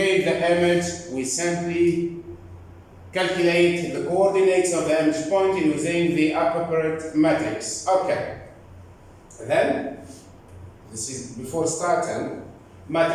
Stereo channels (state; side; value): identical; both; correlation 1.00